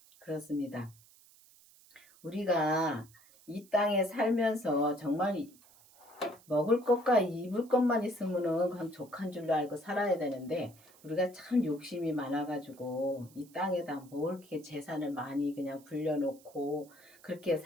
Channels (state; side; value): noise; right; hiss, 26 dB below the sound